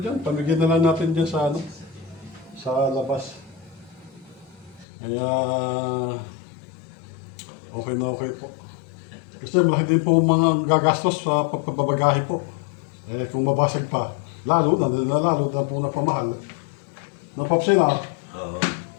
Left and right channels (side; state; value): right; drops out; at 4.9 s